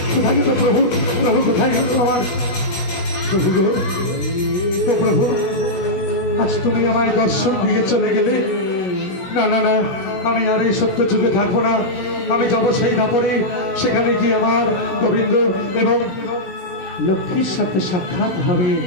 প্রভু প্রভু কোথায় গেল আমার প্রভু? ও প্রভু, আজ তুমি আমায় দর্শন দিয়ে চলে গেলে। না না না, আমি আর এই সত্য যুগে থাকবো না। আমি যাবো সেই দাপরে, সেখানে গিয়ে আমার গোবিন্দ এবং লক্ষ্মীর সাথে সাক্ষাৎ হবে।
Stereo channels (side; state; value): right; late; 17 ms